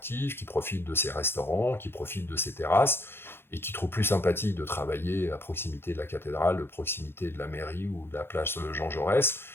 qui profitent de ses restaurants, qui profitent de ses terrasses, et qui trouvent plus sympathique de travailler à proximité de la cathédrale, de proximité de la mairie ou de la place Jean Jaurès,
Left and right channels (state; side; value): late; right; 0.11 ms